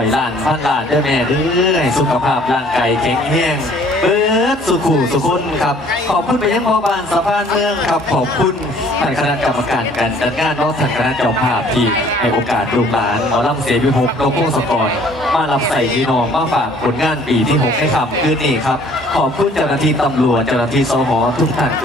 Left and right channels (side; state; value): both; normal; correlation 0.56